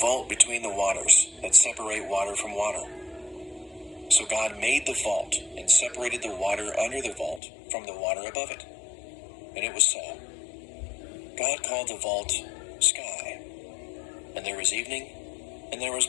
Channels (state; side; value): drops out; right; at 7.4 s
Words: between the waters that separate water from water." So God made the vault and separated the water under the vault from the water above it. And it was so. God called the vault sky. And there was evening, and there was